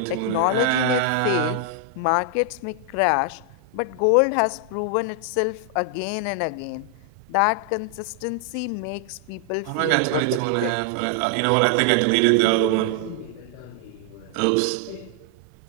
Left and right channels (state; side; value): different; both; correlation 0.00